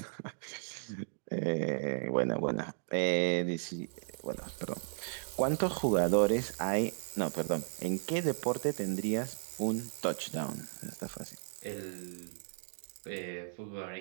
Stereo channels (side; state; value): left; silent; digital silence